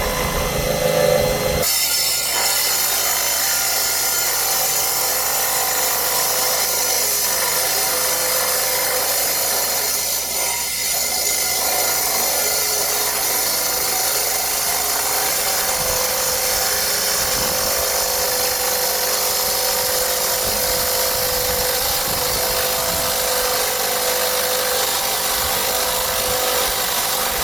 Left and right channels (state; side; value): noise; right; hum, 20 dB below the sound